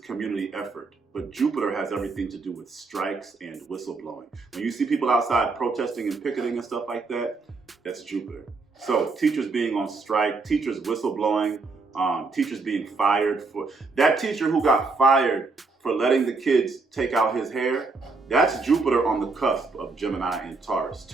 effort, but Jupiter has everything to do with strikes and whistleblowing. When you see people outside protesting and picketing and stuff like that, that's Jupiter. So teachers being on strike, teachers whistleblowing, teachers being fired. For that teacher who got fired for letting the kids take out his hair, that's Jupiter on the cusp of Gemini and Taurus.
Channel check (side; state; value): left; quieter; 3.9 dB